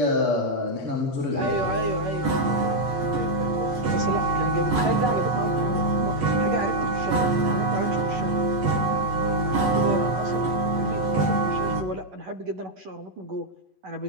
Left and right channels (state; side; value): late; left; 8.2 ms